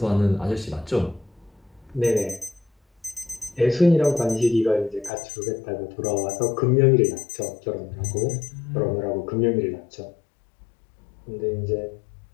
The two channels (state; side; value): drops out; right; at 5.1 s